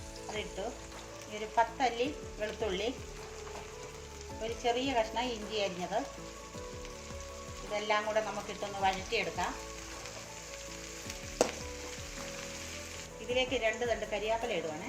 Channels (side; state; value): both; identical; correlation 1.00